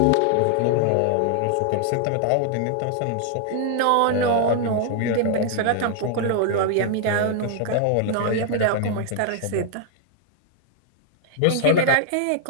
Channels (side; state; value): both; different; correlation 0.00